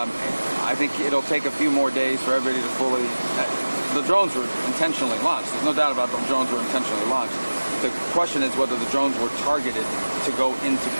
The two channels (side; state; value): both; inverted; correlation -1.00